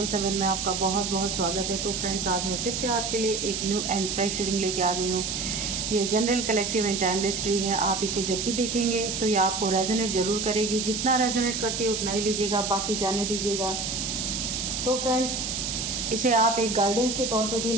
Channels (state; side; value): noise; right; hiss, 2 dB below the sound